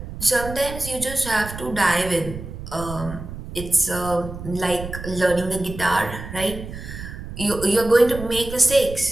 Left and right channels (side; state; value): right; noise; rumble, 10 dB below the sound